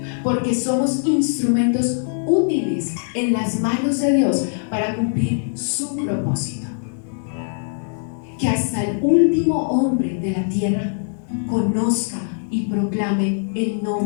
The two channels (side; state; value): right; silent; digital silence